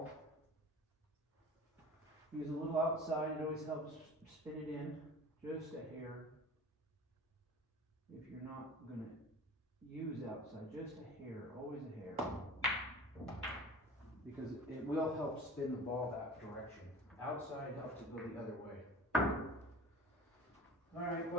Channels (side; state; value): both; normal; correlation 0.40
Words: Use a little outside. It always helps spin it in just a hair. If you're not going to use outside, just a hair, always a hair. because it will help spin the ball that direction. Outside helps it go the other way. Alright,